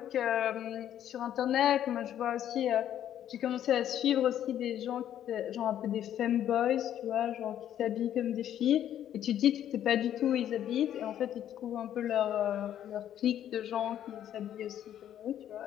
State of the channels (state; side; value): quieter; right; 10.8 dB